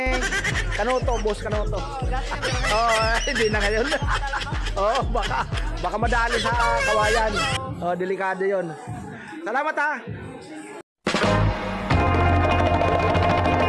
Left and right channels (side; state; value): both; identical; correlation 1.00